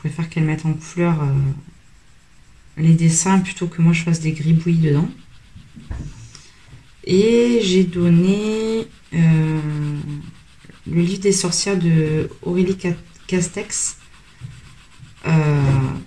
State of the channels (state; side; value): identical; both; correlation 1.00